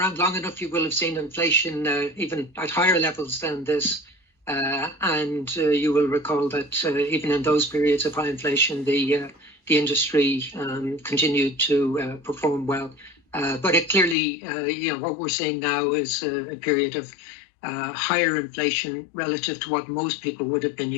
long enough, you will have seen inflation even at higher levels than this. And you will recall that even in those periods of high inflation, the industry continued to perform well. But it clearly, what we're seeing now is a period of higher inflation relative to what most people would have been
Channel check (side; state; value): right; drops out; at 14.2 s